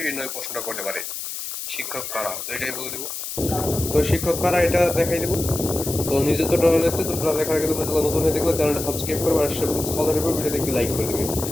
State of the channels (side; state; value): left; noise; hiss, 6 dB below the sound